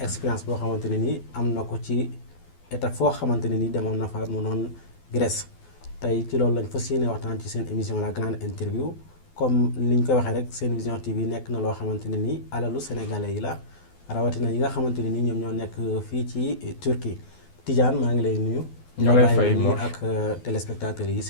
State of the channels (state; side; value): late; right; 12 ms